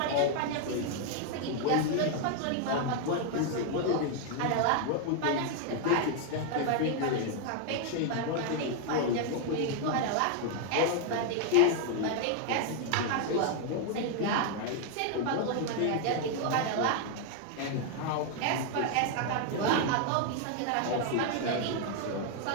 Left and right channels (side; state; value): both; different; correlation 0.00